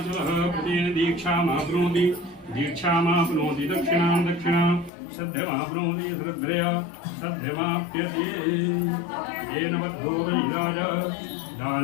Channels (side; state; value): right; drops out; at 4.9 s